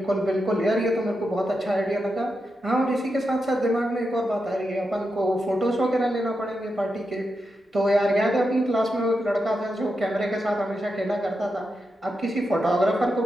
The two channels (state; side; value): normal; both; correlation 0.87